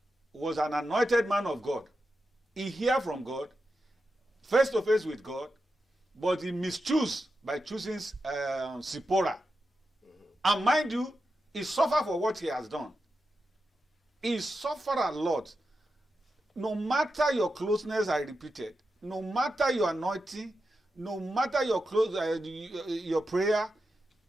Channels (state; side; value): normal; both; correlation 0.89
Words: was an anointed man of God. He heard from God, face to face with God, but he mischools by choosing Zipporah. And mind you, he suffered for what he has done. He suffered a lot. No matter your closeness, I repeat it, no matter your anointing, no matter your your prayer,